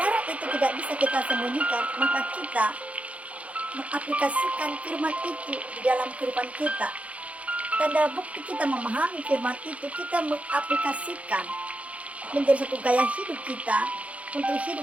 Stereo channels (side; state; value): left; late; 0.065 ms